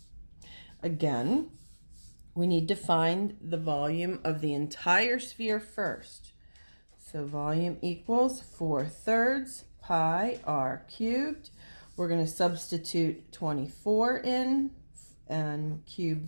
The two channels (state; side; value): inverted; both; correlation -1.00